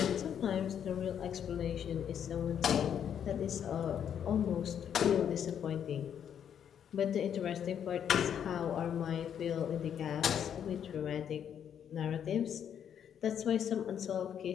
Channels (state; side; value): quieter; right; 8.8 dB